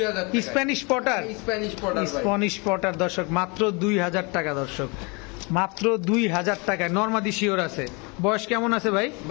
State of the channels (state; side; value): quieter; right; 29.9 dB